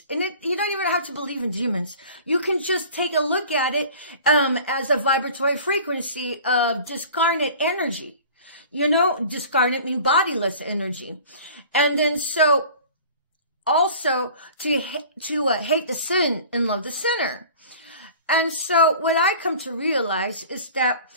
And you don't even have to believe in demons. You can just take a look at it as a vibratory frequency of discarnate energy. You know, discarnate mean bodiless energy. And then so also to hate the sin and love the sinner. And so what I come to realize is that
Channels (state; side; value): inverted; both; correlation -0.44